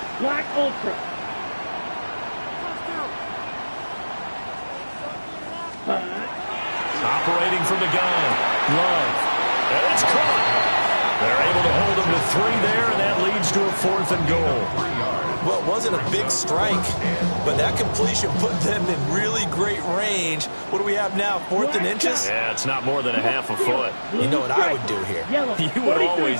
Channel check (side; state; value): both; inverted; correlation -1.00